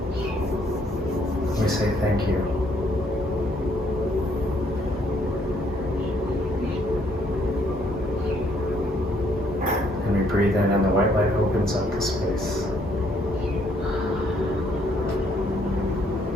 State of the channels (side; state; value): both; normal; correlation 0.68